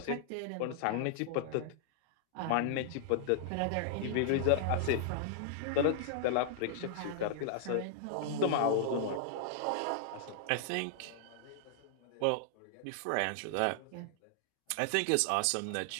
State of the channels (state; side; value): different; both; correlation -0.01